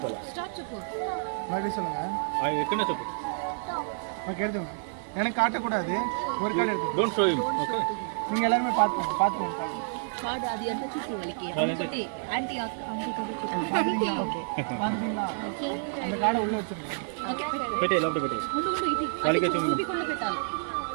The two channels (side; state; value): left; silent; 59 dB below the other